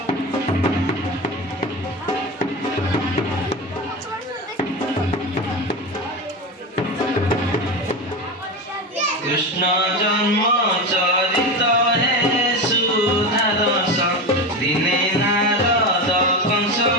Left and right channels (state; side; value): normal; both; correlation 0.22